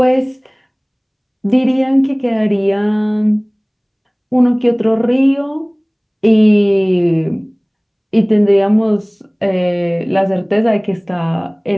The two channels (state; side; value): identical; both; correlation 1.00